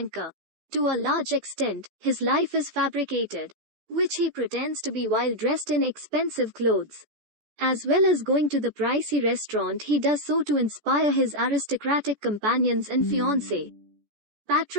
To a large extent, his life is fabricated, which he pretends to be while dressed in expensive clothes. As well as going to the pricey restaurant, he does so to inspire his aristocratic companions and fiancée.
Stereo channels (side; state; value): left; late; 14 ms